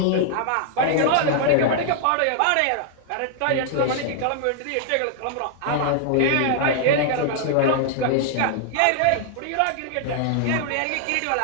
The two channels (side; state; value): both; different; correlation -0.01